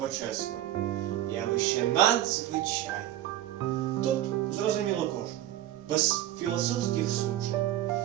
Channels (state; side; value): quieter; left; 13.1 dB